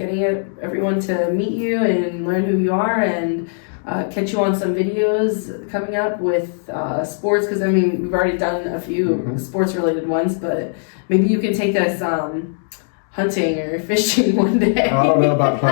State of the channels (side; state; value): right; silent; digital silence